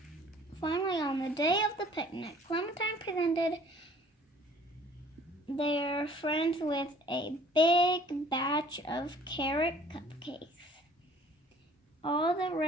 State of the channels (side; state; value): both; normal; correlation 0.54